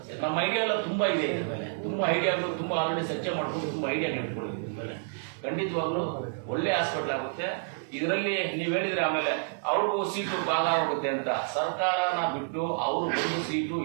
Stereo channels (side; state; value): left; silent; digital silence